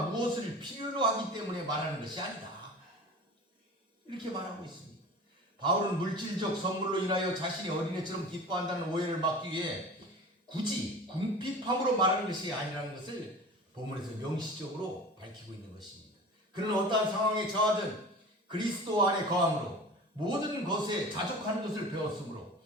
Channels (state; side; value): normal; both; correlation 0.37